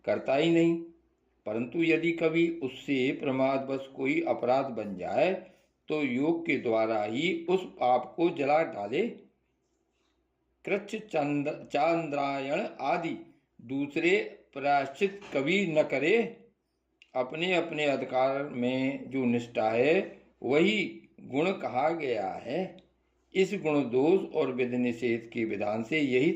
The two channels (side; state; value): both; identical; correlation 1.00